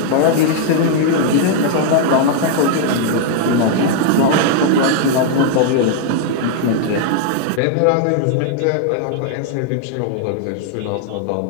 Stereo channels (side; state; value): both; different; correlation 0.00